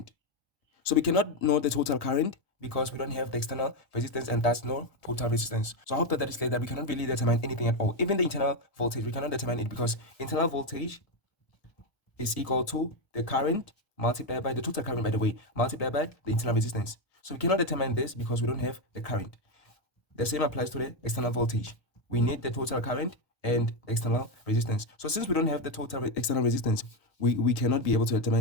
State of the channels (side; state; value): right; late; 1.7 ms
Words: So we cannot know the total current because we don't have the external resistance and thus no total resistance. So I hope that is clear that we cannot really determine anything at all. Even the internal voltage, we cannot determine it because internal voltage is equal to the current multiplied by the total current, by the way, multiplied by the internal resistance. So we cannot determine this because we don't have the current. The same applies to the external voltage. We need the total current and external resistance. So since we don't have the total external resistance, we cannot be able to